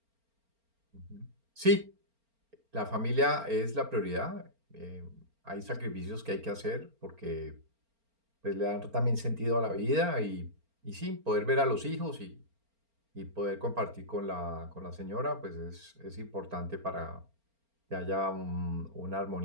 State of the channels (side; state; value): left; late; 4.4 ms